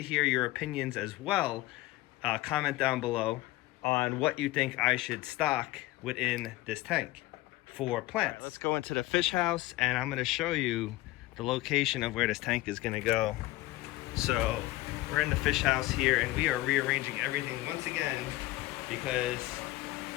hear your opinions as well. Comment down below on what you think I should stock within this tank for plants. Right, let's go into the fish house, and I'm gonna show you the location of where this tank is gonna go. So we're in the fish house here, and we are rearranging everything once again because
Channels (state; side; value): quieter; right; 18.0 dB